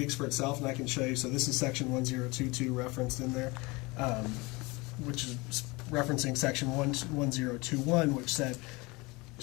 for itself, and I can show you. So this is Section 1022 referenced in there, which is referencing Section 1021, which said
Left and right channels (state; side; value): quieter; right; 24.7 dB